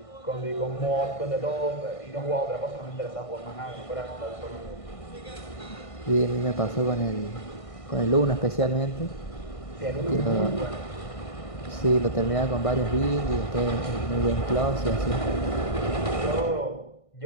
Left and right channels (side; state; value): right; late; 1.5 ms